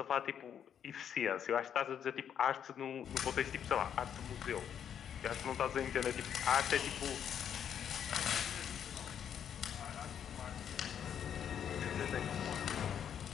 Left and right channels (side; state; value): right; quieter; 8.7 dB